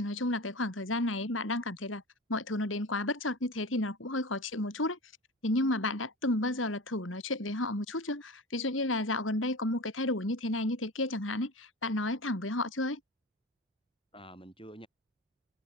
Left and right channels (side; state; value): both; normal; correlation 0.30